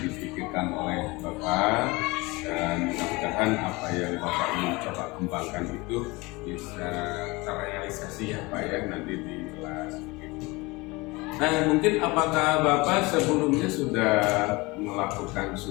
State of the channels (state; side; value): quieter; right; 23.9 dB